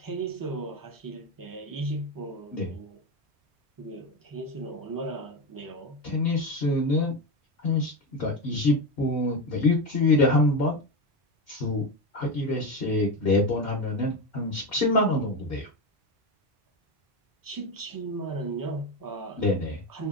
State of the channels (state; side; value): normal; both; correlation 0.16